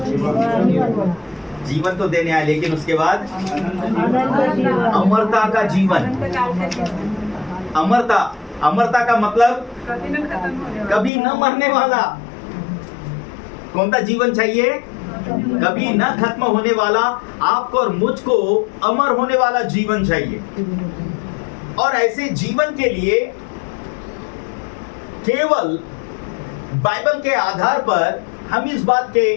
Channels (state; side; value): drops out; right; at 11.1 s